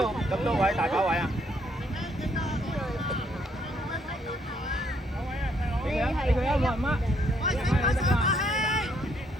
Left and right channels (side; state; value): both; normal; correlation 0.70